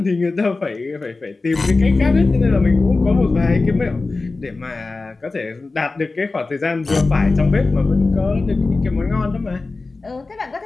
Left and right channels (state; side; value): quieter; right; 3.6 dB